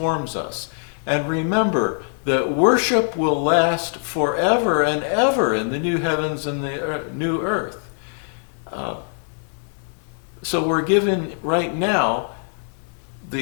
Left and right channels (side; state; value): right; silent; 64 dB below the other